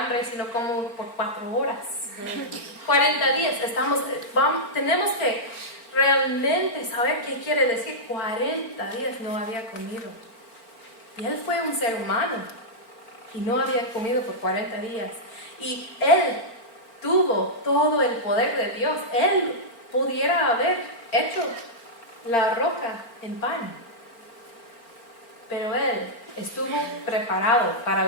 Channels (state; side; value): late; right; 4.4 ms